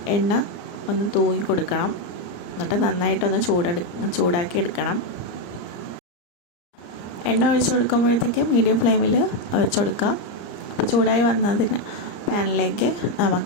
എണ്ണ ഒന്ന് തൂങ്ങി കൊടുക്കണം. എന്നിട്ട് നന്നായിട്ടൊന്ന് ചൂടാക്കി എടുക്കണം. എണ്ണ ഒഴിച്ചു കൊടുക്കുമ്പോഴത്തേക്ക് മീഡിയം ഫ്ലെയിമിൽ വെച്ച് കൊടുക്കാം. അപ്പോൾ ചൂടായി വന്നതിന് പാനിലേക്ക്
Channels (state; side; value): late; right; 34 ms